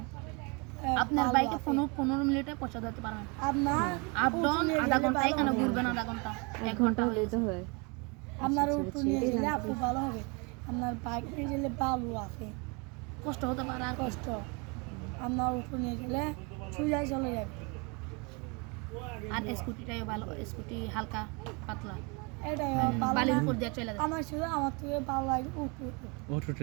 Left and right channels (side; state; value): left; quieter; 30.7 dB